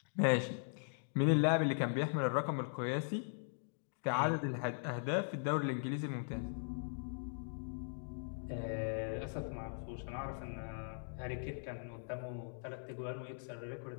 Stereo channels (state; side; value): silent; right; digital silence